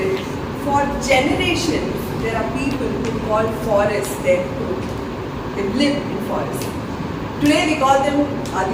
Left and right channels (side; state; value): both; identical; correlation 1.00